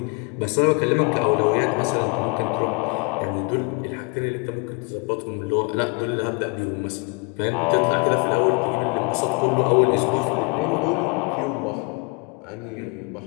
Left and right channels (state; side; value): quieter; right; 31.7 dB